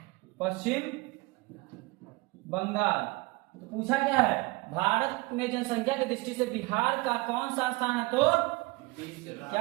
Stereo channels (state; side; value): quieter; left; 23.6 dB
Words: पश्चिम बंगाल। तो पूछा क्या है, भारत में जनसंख्या की दृष्टि से बिहार का कौन सा स्थान है, तो